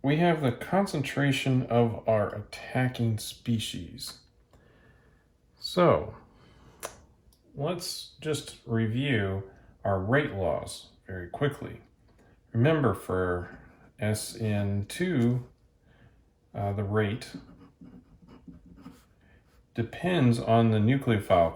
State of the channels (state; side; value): identical; both; correlation 1.00